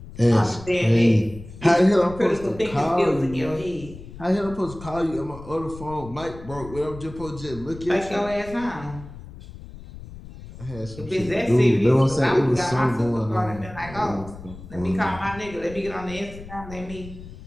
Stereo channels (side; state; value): left; noise; rumble, 15 dB below the sound